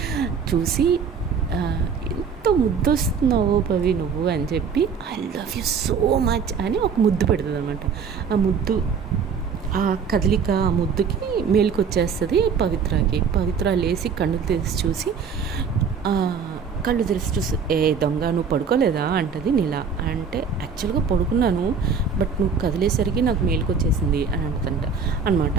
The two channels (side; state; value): left; quieter; 6.0 dB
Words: చూసి ఎంత ముద్దు వస్తున్నావో పవి నువ్వు అని చెప్పి, I love you so much అని ఒక ముద్దు పెడుతుంది అనమాట. ఆ ముద్దు, ఆ కదలిక, ఆ ముద్దుకి మేలుకొచ్చేస్తుంది పవిత్రకి. పవిత్ర లేచి కళ్ళు తెరిచి చూసి, ఏ దొంగ నువ్వు పడుకోలేదా అంటది నీలా. అంటే యాక్చువల్గా పడుకున్నాను, బట్ నువ్వు కదిలేసరికి నాకు మేలుకొచ్చేసింది అని అంటుందంట అనమాట.